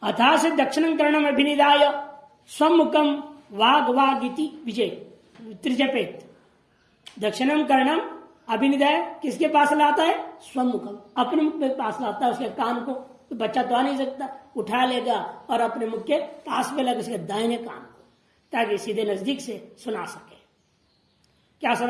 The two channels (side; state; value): both; identical; correlation 1.00